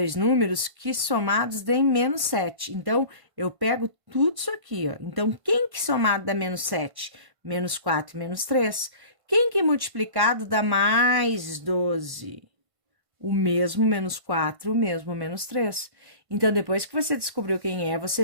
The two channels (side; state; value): left; late; 1.5 ms